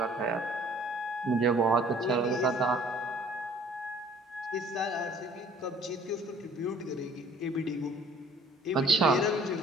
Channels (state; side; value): normal; both; correlation 0.55